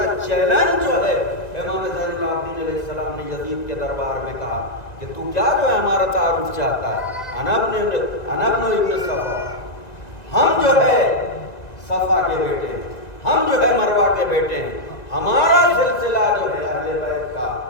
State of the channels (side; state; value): right; late; 2.0 ms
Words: چیلنج جو ہے امام زین العابدین علیہ السلام نے یزید کے دربار میں کہا کہ تو کیا جو ہے ہمارا تعارف چاہتا ہے؟ انا ابن ابن صفا، ہم جو ہے صفا کے بیٹے ہیں، ہم جو ہے مروہ کے بیٹے ہیں، ہمارا سلسلہ جو ہے اہل بیت کا